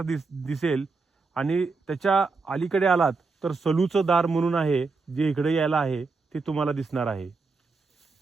दिसेल आणि त्याच्या अलीकडे आलात तर सलूचं दार म्हणून आहे जे इकडे यायला आहे ते तुम्हाला दिसणार आहे.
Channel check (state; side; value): quieter; left; 4.2 dB